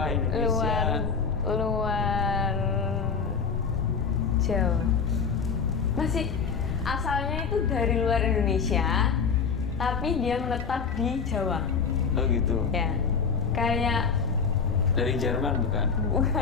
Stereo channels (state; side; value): quieter; right; 5.7 dB